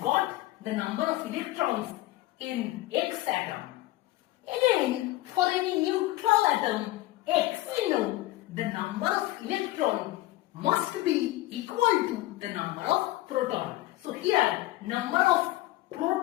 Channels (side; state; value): right; quieter; 17.6 dB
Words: the number of electrons in X atom. Again, for any neutral atom X, we know the number of electron must be equal to the number of proton. So here, number of